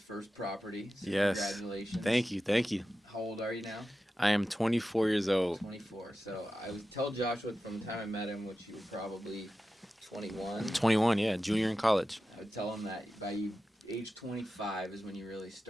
property. So Yes. congratulations. Thank you. Thank you. How old are you now? I am 24 years old. 24. So I would tell Joshua from the time I met him, which you were probably 21. 21, yeah, junior in college. I would tell him that by age 25 is when you really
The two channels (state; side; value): normal; both; correlation 0.92